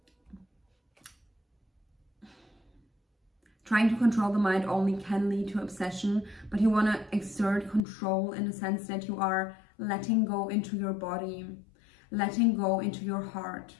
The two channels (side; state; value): right; drops out; at 7.8 s